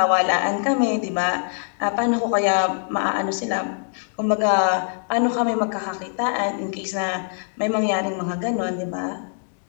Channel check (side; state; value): right; silent; digital silence